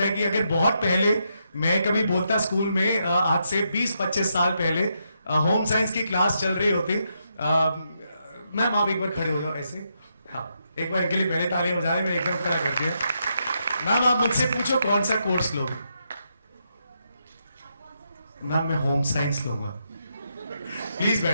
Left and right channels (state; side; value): inverted; both; correlation -0.80